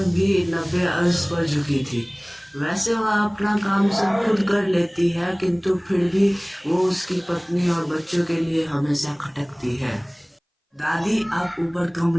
भी 90 अर्श पर झुकी थी। वैसे वह अपना काम सब खुद कर लेती है, किंतु फिर भी वो उसकी पत्नी और बच्चों के लिए हमेशा खटकती है। दादी, आप ऊपर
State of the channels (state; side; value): identical; both; correlation 1.00